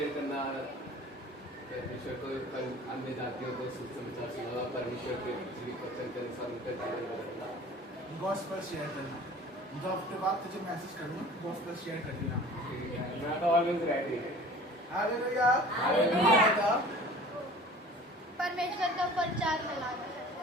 करना, परमेश्वर को अन्य जातियों को सुसमाचार सुनाना, परमेश्वर के जीवित वचन के अनुसार उनका जीवन बदलना। गॉस्पेल शेयर करना, मतलब हफ्ते बाद तुझे मैसेज करूँगा, गॉस्पेल शेयर कर देना। मैं तो ऑलवेज रेडी है। Hallelujah, hallelujah. परमेश्वर का प्रचार फैलाना।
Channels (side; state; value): both; normal; correlation 0.44